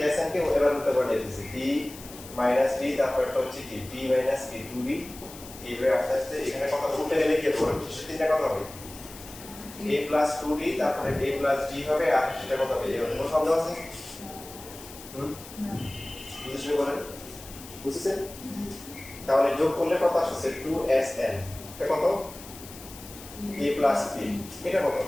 এসএন কে এবার উল্টা করে লিখেছি d মাইনাস d তারপর এটা হচ্ছে কি d মাইনাস কি 2d এইভাবে আস্তে আস্তে এখানে কত উল্টা গেলে কি হবে তিনটা কত হবে a plus 2d তারপরে a plus d হবে আর সেটা কত হবে এর কোনো সন্দেহ আছে না বুঝতে বলেন বুঝছেন তাহলে যোগ করলে কত আসছে 2sn এটা কত a plus b এটা কত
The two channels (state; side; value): noise; left; hiss, 16 dB below the sound